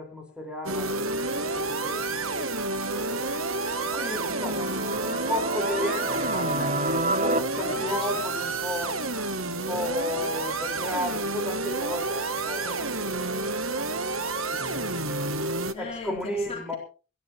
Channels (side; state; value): both; normal; correlation 0.02